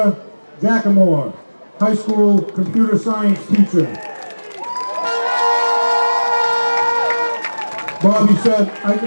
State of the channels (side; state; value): both; inverted; correlation -1.00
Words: Jackamore, high school computer science teacher. Bobby said, I